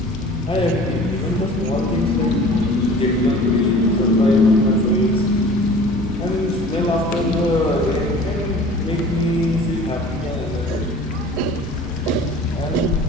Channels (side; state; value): both; normal; correlation 0.45